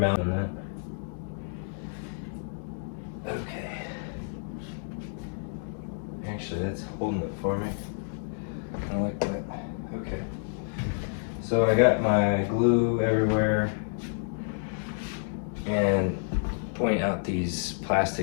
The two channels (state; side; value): silent; right; digital silence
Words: on that. Okay. Actually, that's holding it for me. I like that. Okay. So I got my glue everywhere. And point out these